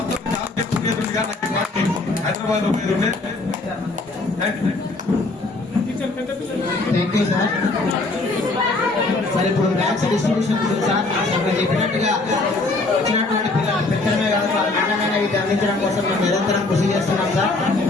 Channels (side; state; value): right; quieter; 3.2 dB